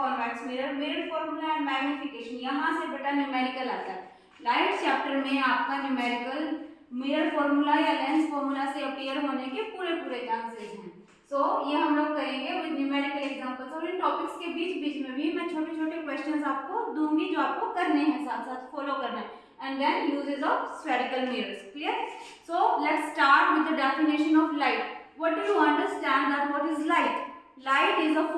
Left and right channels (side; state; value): both; identical; correlation 1.00